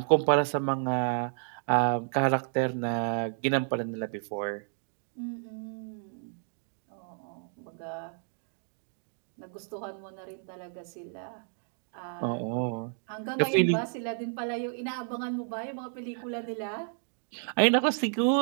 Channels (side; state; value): left; silent; 57 dB below the other